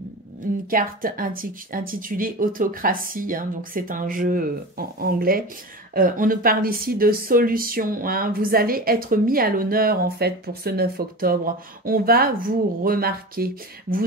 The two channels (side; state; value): both; normal; correlation 0.30